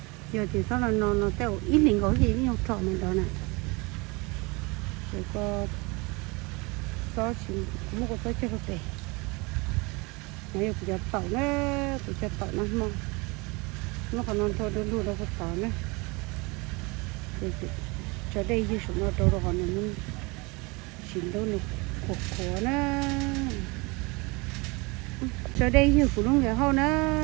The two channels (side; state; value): left; quieter; 26.8 dB